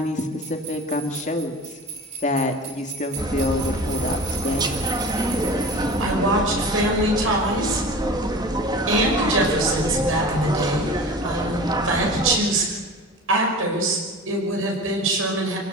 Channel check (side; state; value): both; normal; correlation 0.36